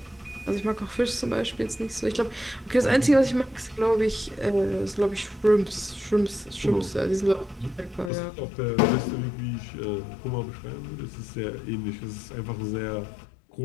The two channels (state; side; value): drops out; right; at 8.1 s